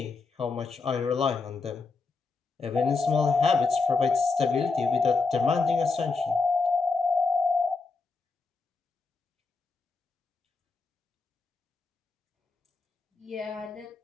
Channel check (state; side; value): quieter; right; 4.1 dB